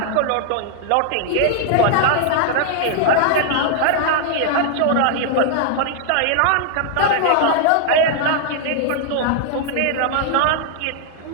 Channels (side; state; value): both; different; correlation 0.00